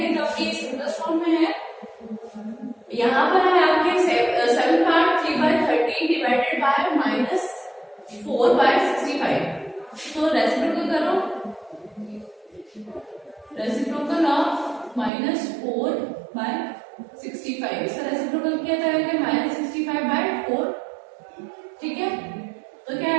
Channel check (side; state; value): left; drops out; at 15.1 s